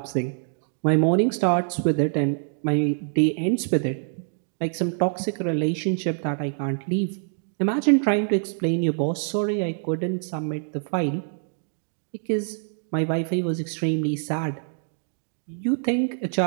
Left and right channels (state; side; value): silent; left; 62 dB below the other